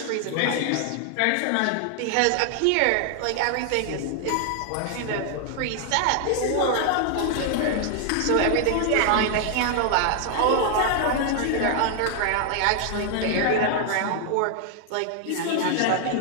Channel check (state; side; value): different; both; correlation 0.00